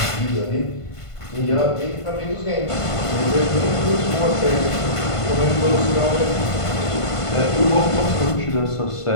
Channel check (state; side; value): late; right; 1.5 ms